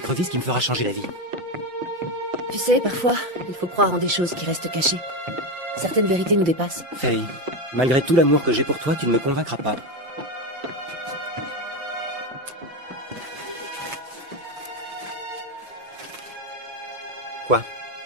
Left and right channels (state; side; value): late; left; 5.7 ms